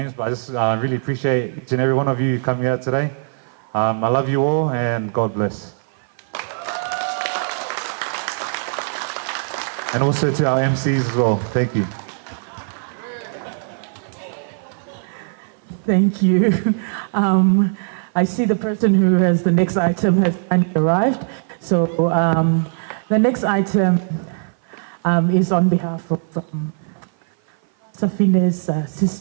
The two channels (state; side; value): silent; left; 57 dB below the other